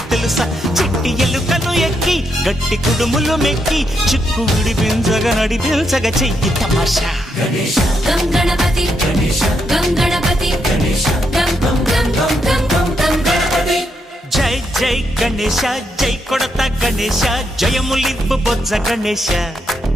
తెలుసా చిట్టి ఎలుకను ఎక్కి గట్టి కుడుములు మెక్కి చిక్కు విడిపించగా నడిపించగా చెయ్యి తమాషా గం గణపతి గం గణపతి గం గం గం గం గం గం గణపతి జై జై గణేశ జై కొడత గణేశ జయములివ్వు బొజ్జ గణేశ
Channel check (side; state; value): both; normal; correlation 0.79